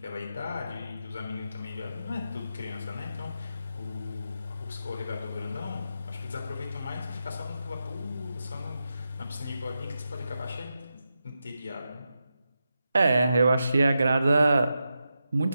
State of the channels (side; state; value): both; inverted; correlation -0.88